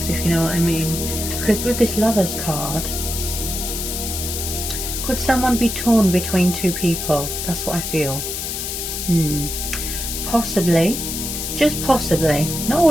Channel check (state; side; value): noise; left; hiss, 4 dB below the sound